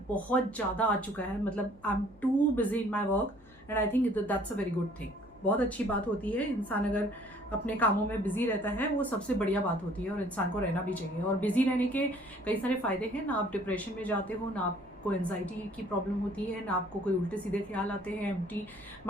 बहुत ज़्यादा आ चुका है, मतलब I am too busy in my work and I think that's a very good thing. बहुत अच्छी बात होती है, इंसान अगर अपने कामों में बिजी रहता है वो सबसे बढ़िया बात होती है, और इंसान को रहना भी चाहिए। और बिजी रहने के कई सारे फायदे हैं, ना आप डिप्रेशन में जाते हो, ना आपको एंजाइटी की प्रॉब्लम होती है, ना आपको कोई उल्टे सीधे ख्याल आते हैं। Empty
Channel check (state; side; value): noise; right; hum, 26 dB below the sound